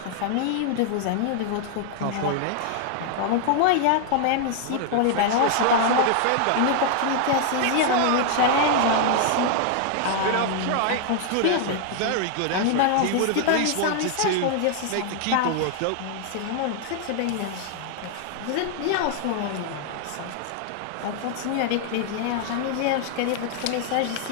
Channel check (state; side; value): different; both; correlation 0.00